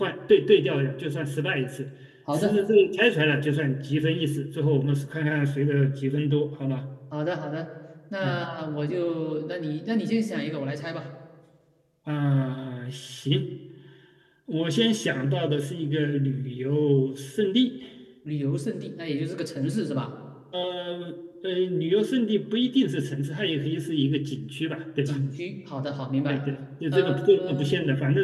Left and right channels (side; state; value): both; identical; correlation 1.00